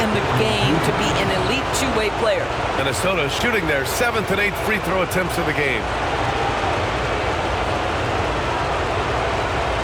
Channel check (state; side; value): identical; both; correlation 1.00